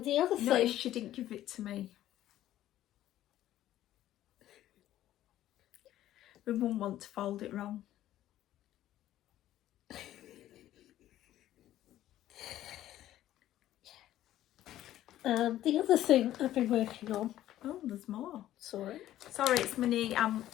the other thing... Notice she didn't give it to me. We wouldn't want to fold it wrong. And the other thing I've been working on... Oh, there's more. Sorry, it's my knee.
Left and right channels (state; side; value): quieter; right; 13.3 dB